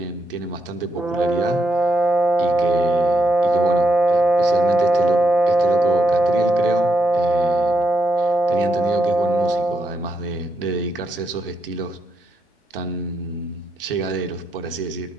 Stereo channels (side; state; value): both; normal; correlation 0.80